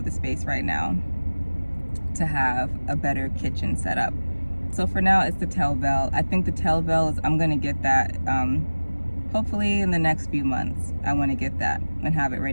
the space right now to have a better kitchen set up. So for now, it's the Telvale. I think the Telvale is, I'm gonna get that, hopefully in the next few months. I wanna get that and have it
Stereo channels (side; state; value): both; inverted; correlation -1.00